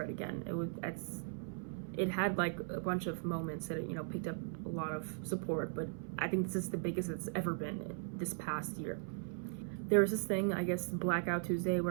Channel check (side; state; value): left; silent; 52 dB below the other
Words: again. It had like a bunch of moments that it, you know, picked up a lot of support, but I think this is the biggest it's ever been this past year. There was this thing, I guess, Blackout Tuesday,